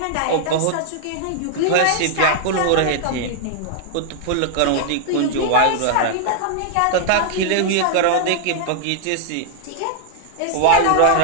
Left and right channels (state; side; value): different; both; correlation 0.00